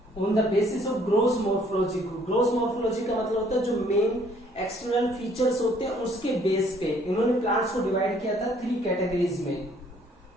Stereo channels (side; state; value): both; normal; correlation 0.62